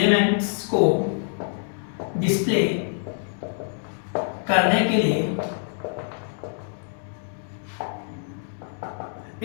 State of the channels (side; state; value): right; silent; 61 dB below the other